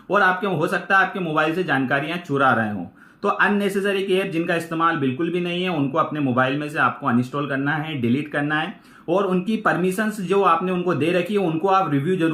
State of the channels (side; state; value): both; identical; correlation 1.00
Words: और आपके हो सकता है आपके मोबाइल से जानकारियां चुरा रहे हो। तो अननेसेसरी ऐप जिनका इस्तेमाल बिल्कुल भी नहीं है उनको अपने मोबाइल में से आपको अनइंस्टॉल करना है, डिलीट करना है और उनकी परमिशंस जो आपने उनको दे रखी है उनको आप रिव्यू